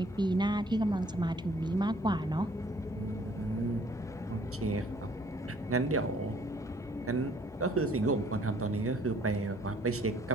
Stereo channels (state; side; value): normal; both; correlation 0.60